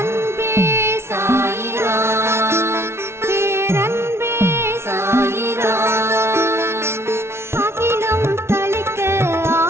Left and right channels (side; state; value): left; late; 0.12 ms